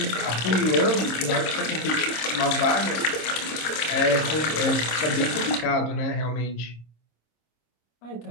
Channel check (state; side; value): late; right; 26 ms